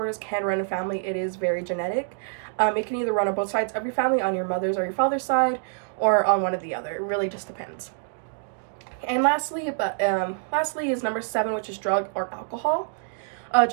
can run in family. It is very genetic. It can either run on both sides of your family, on your mother's or your father's side, or on one or the other. It really just depends. And lastly is number 7, which is drug or alcohol.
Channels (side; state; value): left; silent; digital silence